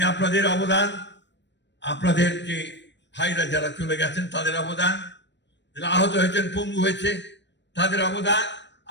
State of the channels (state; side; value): late; right; 0.52 ms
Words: আপনাদের অবদান, আপনাদের যে ভাইরা যারা চলে গেছেন তাদের অবদান, যারা আহত হয়েছেন, পঙ্গু হয়েছে, তাদের অবদান